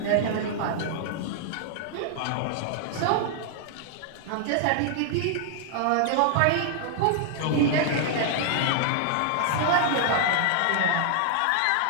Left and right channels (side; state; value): both; different; correlation -0.01